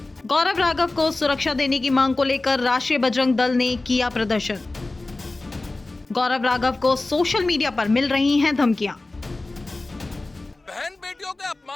गौरव राघव को सुरक्षा देने की मांग को लेकर राष्ट्रीय बजरंग दल ने किया प्रदर्शन। गौरव राघव को सोशल मीडिया पर मिल रही हैं धमकियां। बहन बेटियों के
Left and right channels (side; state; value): right; quieter; 3.1 dB